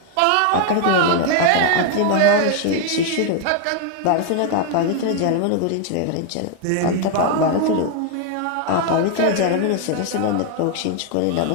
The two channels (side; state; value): both; different; correlation 0.00